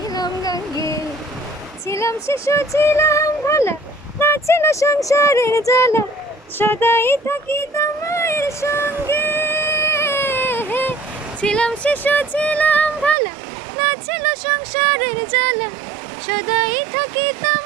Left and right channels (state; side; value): drops out; left; at 13.2 s